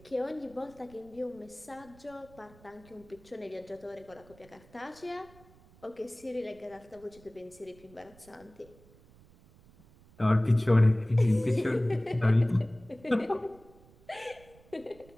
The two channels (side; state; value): right; noise; rumble, 25 dB below the sound